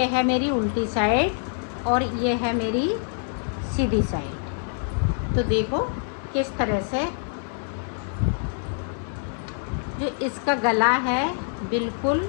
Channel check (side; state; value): right; silent; 61 dB below the other